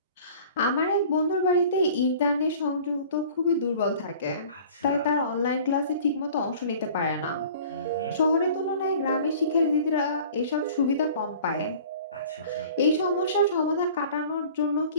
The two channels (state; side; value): inverted; both; correlation -0.46